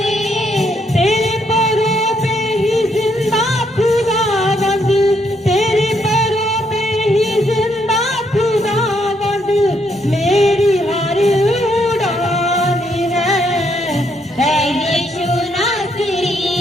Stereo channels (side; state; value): both; normal; correlation 0.74